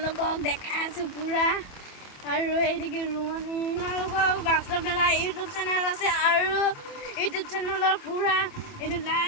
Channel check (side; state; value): right; late; 27 ms